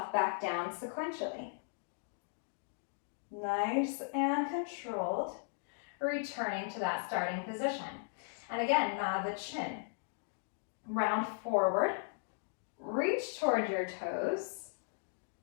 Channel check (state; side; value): silent; right; digital silence